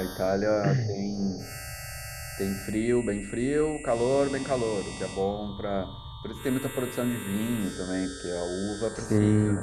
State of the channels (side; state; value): both; identical; correlation 1.00